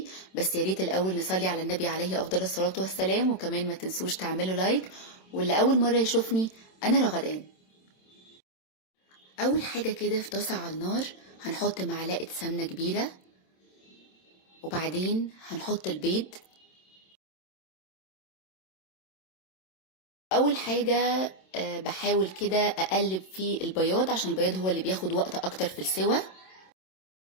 بس يا ريت الأول نصلي على النبي عليه أفضل الصلاة والسلام، وكمان ما تنسوش تعملوا لايك. واللي أول مرة يشوفني، أنا رغدان. أول حاجة كده في طاسة على النار هنحط معلقة سمنة كبيرة، وبعدين هنحط البيض. اول حاجة بحاول كده اقلب في البياض عشان البياض هو اللي بياخد وقت اكتر في السوى.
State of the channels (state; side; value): late; right; 27 ms